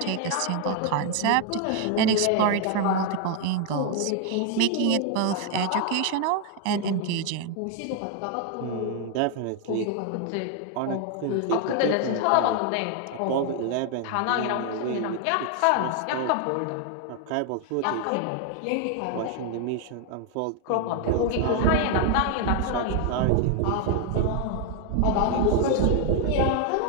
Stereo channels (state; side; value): different; both; correlation 0.00